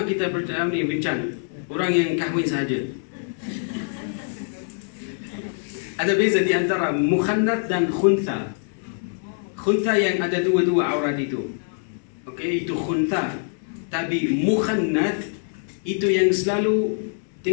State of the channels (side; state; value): right; silent; 60 dB below the other